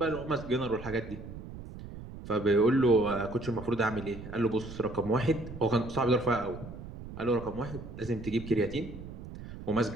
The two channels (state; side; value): noise; right; rumble, 12 dB below the sound